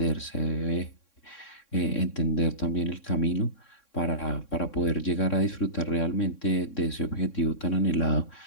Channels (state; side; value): late; right; 3.6 ms